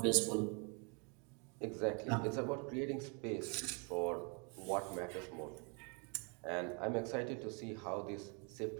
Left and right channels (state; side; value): quieter; left; 35.0 dB